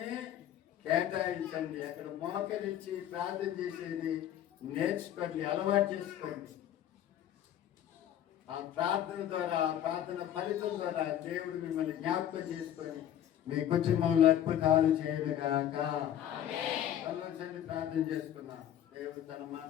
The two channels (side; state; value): right; quieter; 11.0 dB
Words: కేటాయించండి. అక్కడ మోకరించి ప్రార్థన చేసేది నేర్చుకోండి, అలవాటు చేసుకోండి. ఆ ప్రార్థన ద్వారా, ఆ ప్రార్థన ఫలితం ద్వారా దేవుడు మిమ్మల్ని జ్ఞాపకం చేసుకొని మీ కుటుంబంలో అద్భుతాలు చేయనుగాక. ఆలోచన ప్రార్థన చేసుకున్నాం. దేవుడు తన